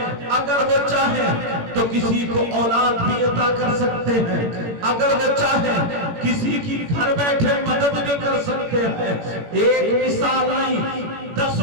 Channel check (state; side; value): late; left; 18 ms